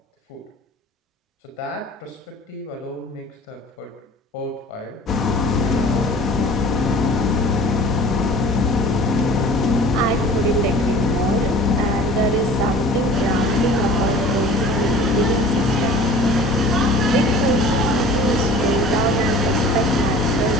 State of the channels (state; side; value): normal; both; correlation 0.45